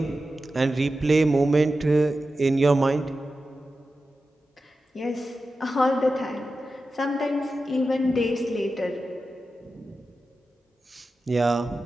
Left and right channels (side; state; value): both; normal; correlation 0.92